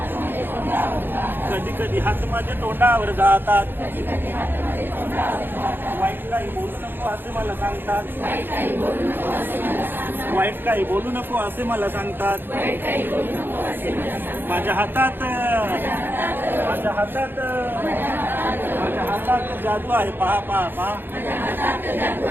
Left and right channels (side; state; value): left; late; 0.099 ms